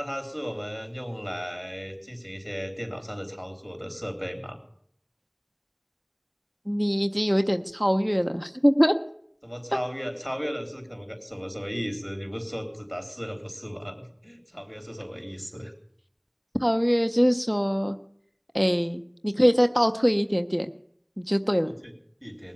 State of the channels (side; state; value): both; identical; correlation 1.00